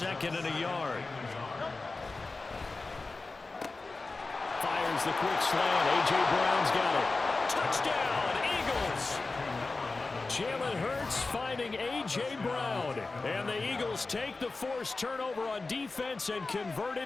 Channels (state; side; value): quieter; right; 3.6 dB